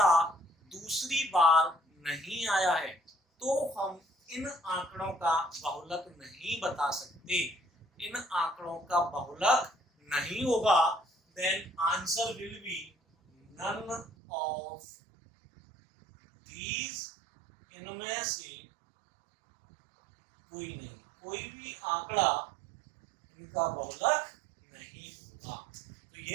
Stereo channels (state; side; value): drops out; left; at 14.1 s